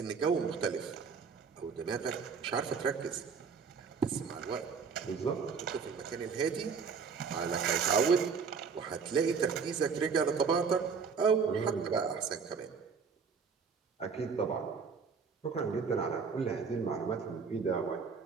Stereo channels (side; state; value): left; quieter; 5.7 dB